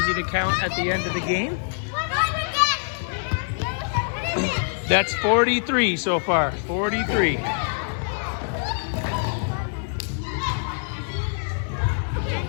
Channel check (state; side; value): silent; right; digital silence